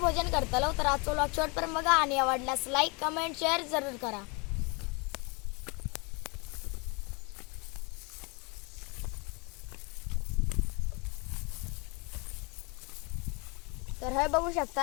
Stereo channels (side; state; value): right; quieter; 30.3 dB